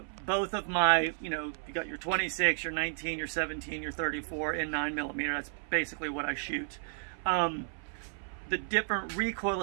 both of my, you know, you got your 26, your 19, your 17, your 34 in 9mm. That's basically what I shoot. The different recoil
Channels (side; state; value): left; silent; 56 dB below the other